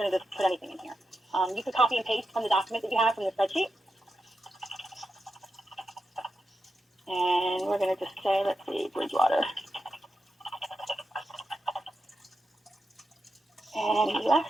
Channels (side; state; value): both; normal; correlation 0.88